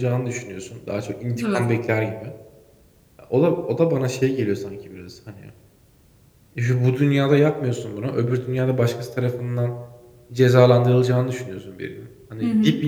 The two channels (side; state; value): both; identical; correlation 1.00